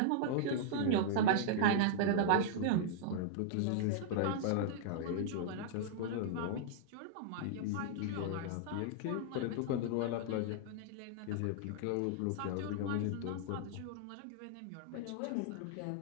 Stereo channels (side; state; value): both; different; correlation -0.01